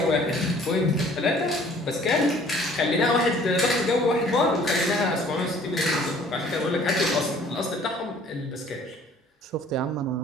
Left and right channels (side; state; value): both; normal; correlation 0.54